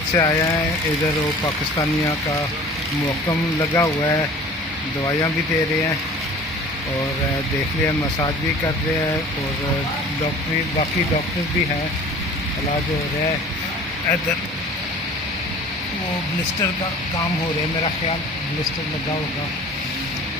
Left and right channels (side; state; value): both; normal; correlation 0.45